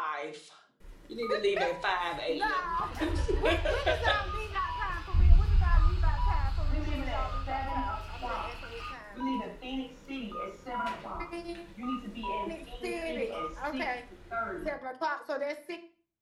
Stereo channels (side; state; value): both; identical; correlation 1.00